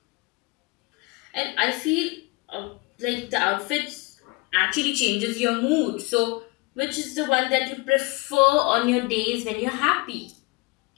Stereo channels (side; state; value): right; quieter; 24.8 dB